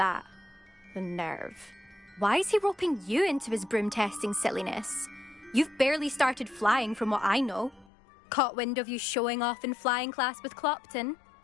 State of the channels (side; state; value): right; drops out; at 7.9 s